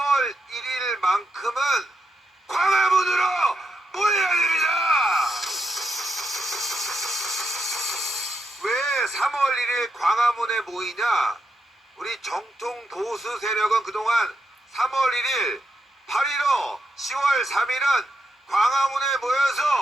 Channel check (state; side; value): normal; both; correlation 0.82